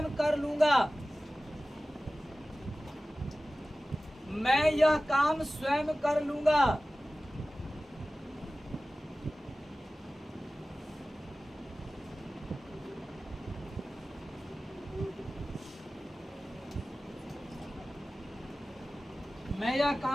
कर लूंगा। मैं यह काम स्वयं कर लूंगा। मैं यह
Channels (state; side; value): normal; both; correlation 0.97